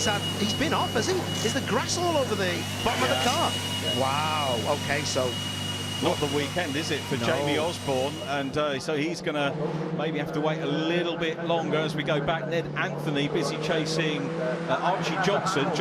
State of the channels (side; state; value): both; identical; correlation 1.00